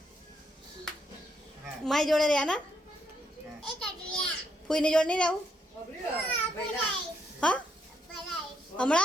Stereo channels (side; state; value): both; normal; correlation 0.76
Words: મારી જોડે રહ્યા ને ફૂઈની જોડે નહીં રહેવું હા